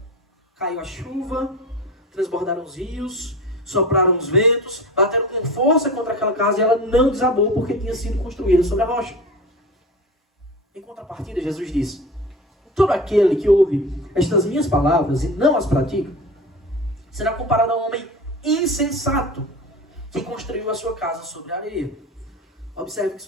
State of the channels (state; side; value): normal; both; correlation 0.32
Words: Caiu a chuva, transbordaram os rios, sopraram os ventos, bateram com força contra aquela casa e ela não desabou porque tinha sido construída sobre a rocha. Em contrapartida, Jesus disse: todo aquele que ouve estas minhas palavras e não as pratica, será comparado a um homem insensato que construiu a sua casa sobre a areia. Observe que